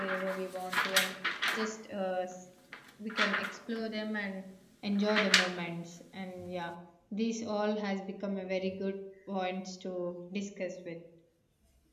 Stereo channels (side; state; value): both; identical; correlation 1.00